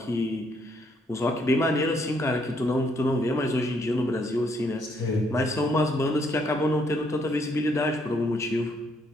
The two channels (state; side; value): normal; both; correlation 0.71